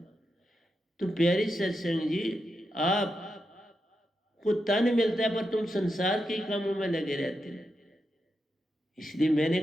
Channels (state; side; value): normal; both; correlation 0.86